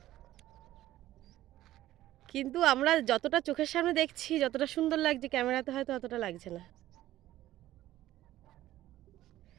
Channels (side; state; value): left; quieter; 14.5 dB